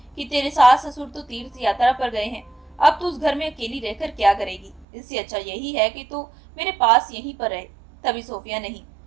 कि तेरे सास ससुर तो तीर्थ यात्रा पर गए हैं, अब तू उस घर में अकेली रहकर क्या करेगी? इससे अच्छा यही है कि तू मेरे पास यहीं पर रहे। तभी सोफिया, नहीं,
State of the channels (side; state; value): left; drops out; at 4.9 s